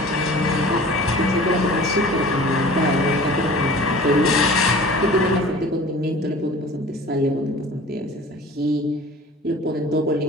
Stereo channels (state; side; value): normal; both; correlation 0.43